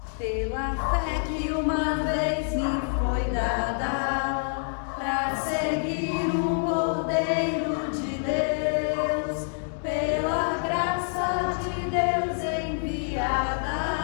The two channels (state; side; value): silent; right; digital silence